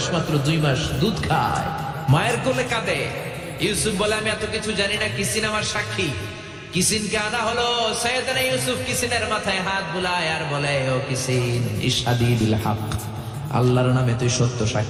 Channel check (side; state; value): both; identical; correlation 1.00